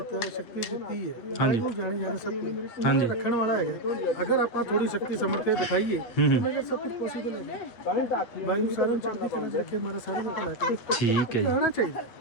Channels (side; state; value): right; late; 8.6 ms